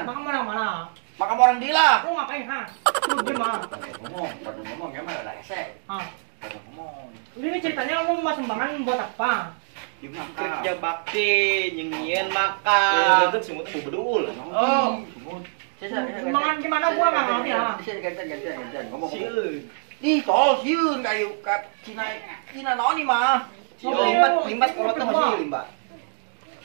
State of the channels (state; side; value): silent; left; 62 dB below the other